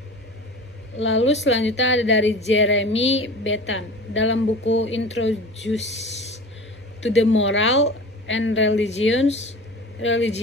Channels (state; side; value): normal; both; correlation 0.36